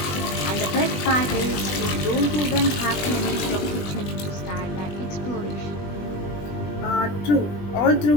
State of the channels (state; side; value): late; right; 20 ms